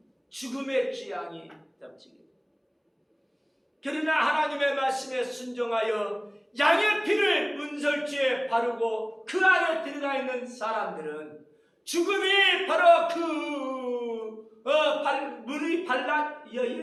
죽음의 재앙이 덮치게. 그러나 하나님의 말씀에 순종하여 양의 피를 문설주에 바르고 그 안에 들어가 있는 사람들은 죽음이 바로 문이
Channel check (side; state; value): both; identical; correlation 1.00